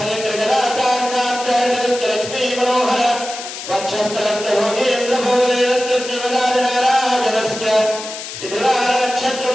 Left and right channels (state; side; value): noise; left; hiss, 10 dB below the sound